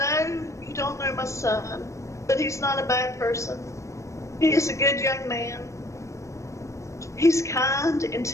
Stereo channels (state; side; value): late; right; 0.15 ms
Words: you don't know my son, but he's not a bad person. He is a good young man. He's kind,